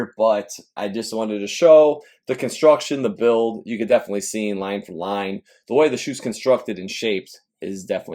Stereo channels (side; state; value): both; identical; correlation 1.00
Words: but I just wanted to show the construction, the build. You could definitely see in line for line, the way the shoe's constructed and shaped is